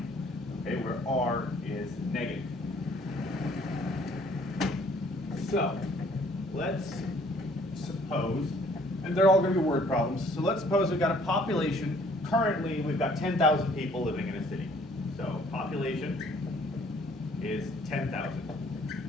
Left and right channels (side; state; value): both; normal; correlation 0.60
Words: okay, where R is negative. So, let's suppose, and they're all going to be word problems, so let's suppose we've got a population, currently we've got 10,000 people living in a city. So population is